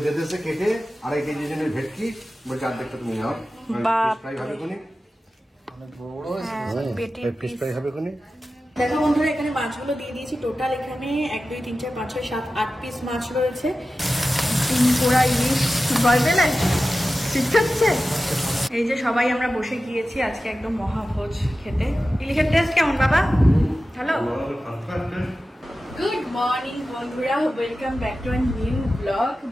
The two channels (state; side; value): normal; both; correlation 0.94